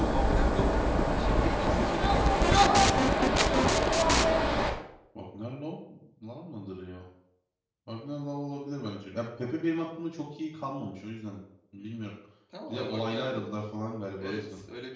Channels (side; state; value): both; identical; correlation 1.00